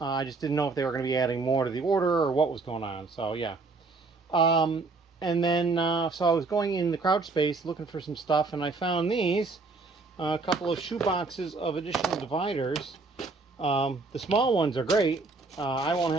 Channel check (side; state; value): left; quieter; 3.8 dB